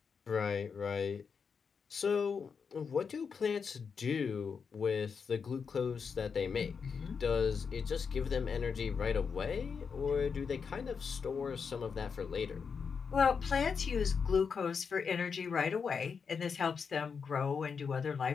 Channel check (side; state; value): right; quieter; 5.9 dB